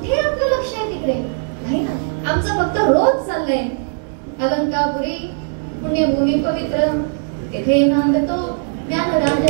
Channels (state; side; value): silent; left; digital silence